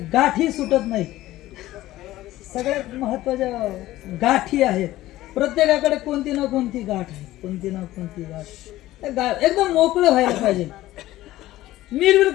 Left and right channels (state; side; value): quieter; right; 15.9 dB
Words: गाठी सुटत नाही. सगळ्यात महत्वाच्या गाठी आहेत. प्रत्येकाकडे कोणती ना कोणती गाठ आहे, कोणती ना कोणती गाठ. एकदम मोकळं व्हायला पाहिजे,